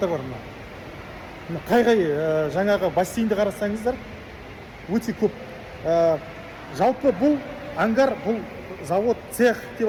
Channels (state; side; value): identical; both; correlation 1.00